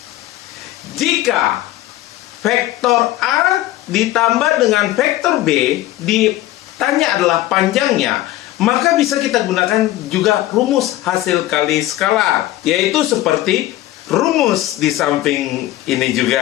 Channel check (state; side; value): quieter; right; 15.5 dB